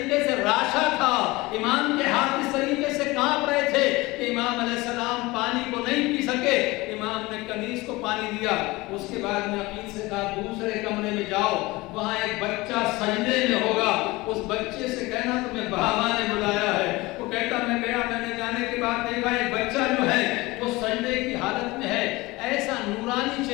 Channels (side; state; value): right; quieter; 21.5 dB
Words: سے راشا تھا، امام کے ہاتھ اس طریقے سے کانپ رہے تھے کہ امام علیہ السلام پانی کو نہیں پی سکے۔ امام نے کنیز کو پانی دیا. اس کے بعد میں عقیل سے کہا دوسرے کمرے میں جاؤ, وہاں ایک بچہ سجدے میں ہوگا, اس بچے سے کہنا تمہیں بابا نے بلایا ہے. وہ کہتا میں گیا, میں نے جانے کے بعد دیکھا ایک بچہ جو ہے وہ سجدے کی حالت میں ہے, ایسا نورانی